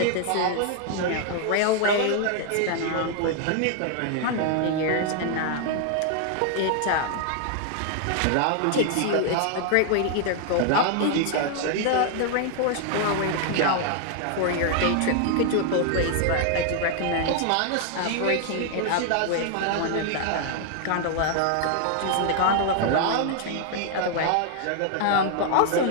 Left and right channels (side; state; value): both; different; correlation 0.00